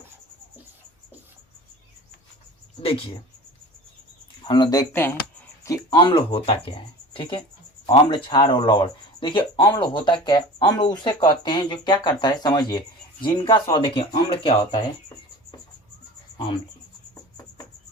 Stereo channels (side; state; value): both; normal; correlation 0.38